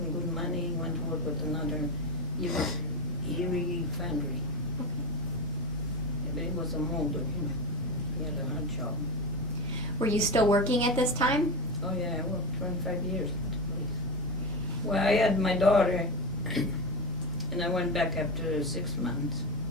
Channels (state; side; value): normal; both; correlation 0.19